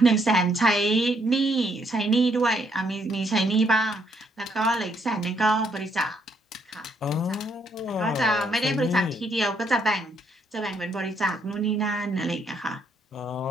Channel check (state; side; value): normal; both; correlation 0.72